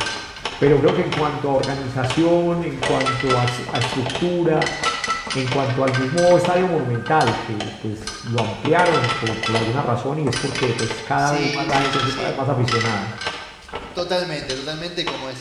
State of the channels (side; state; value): both; identical; correlation 1.00